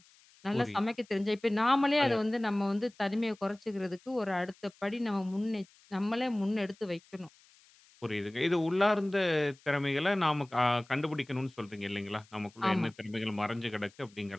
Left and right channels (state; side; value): noise; left; hiss, 28 dB below the sound